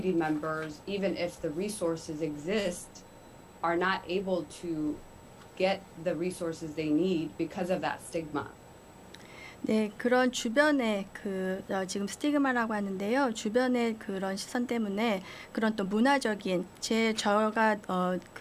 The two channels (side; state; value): both; identical; correlation 1.00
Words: members, even if the resources exist, are not able to get the resources they need because of that stigma. 네, 그런 주변에 지금 스티그마라고 하는데요. 주변의 그런 시선 때문에 그런 또 문화적인 저가